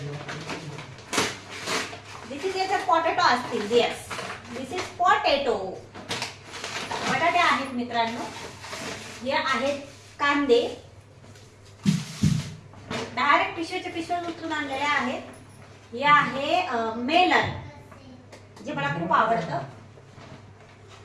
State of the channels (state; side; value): identical; both; correlation 1.00